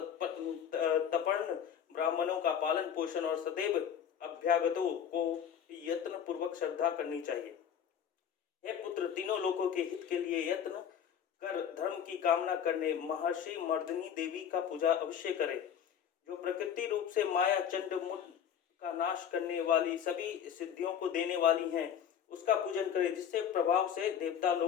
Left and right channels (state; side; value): quieter; right; 8.5 dB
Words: तपर्ण ब्राह्मणों का पालन पोषण और सदैव अभ्यागतों को यत्न पूर्वक श्रद्धा करनी चाहिए। हे पुत्र, तीनों लोगों के हित के लिए यत्न कर धर्म की कामना करने महर्षि मर्दिनी देवी का पूजा अवश्य करें, जो प्रकृति रूप से माया चंड मुंड का नाश करने वाली सभी सिद्धियों को देने वाली हैं। उसका पूजन करें, जिससे प्रभाव से देवता